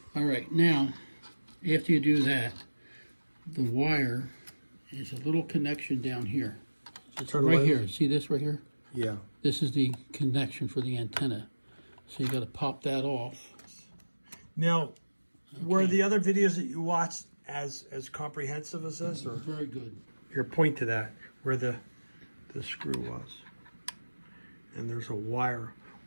all right. Now, after you do that, the wire is a little connection down here. It's right here. See this right here? Yeah. This is the connection for the antenna. So you got to pop that off. Now, were the other videos that you watched as comprehensive as this? Or Very good. here, point to that, where the screw was. And there's a wire.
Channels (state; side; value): inverted; both; correlation -1.00